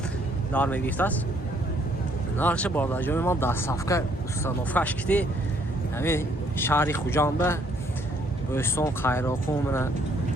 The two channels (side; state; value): both; normal; correlation 0.66